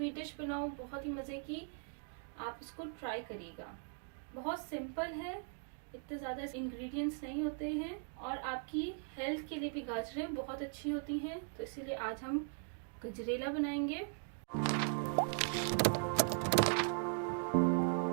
डिश बनाऊं बहुत ही मजे की। आप इसको ट्राई करिएगा। बहुत सिंपल है, इतने ज्यादा इंग्रेडिएंट्स नहीं होते हैं और आपकी हेल्थ के लिए भी गाजरें बहुत अच्छी होती हैं। तो इसीलिए आज हम गजरेला बनाएंगे।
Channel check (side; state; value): left; silent; 52 dB below the other